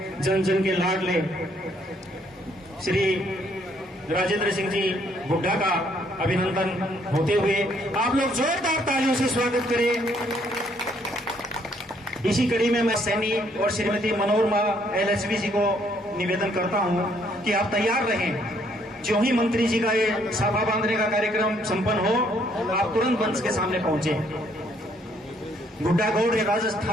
जन जन के लाडले श्री राजेंद्र सिंह जी हुड्डा का अभिनंदन होते हुए आप लोग जोरदार तालियों से स्वागत करें। इसी कड़ी में मैं सैनी और श्रीमती मनोरमा LHV जी को निवेदन करता हूं कि आप तैयार रहें। जो ही मंत्री जी का ये साफा बांधने का कार्यक्रम संपन्न हो, आप तुरंत मंच के सामने पहुंचे। गुड्डागौड़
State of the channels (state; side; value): normal; both; correlation 0.68